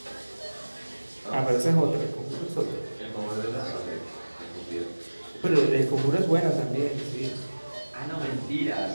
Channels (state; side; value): inverted; both; correlation -1.00